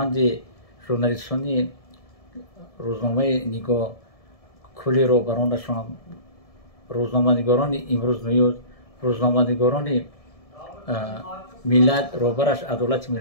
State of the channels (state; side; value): late; right; 1.7 ms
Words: ژورنالیستانی روزنامه نگاه کلی رو برانشان، روزنامه‌نگاران امروز نیوز، روزنامه‌نگاران ملت روبرش عدالت